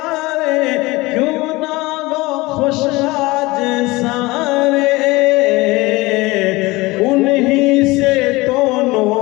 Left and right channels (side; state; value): right; quieter; 21.8 dB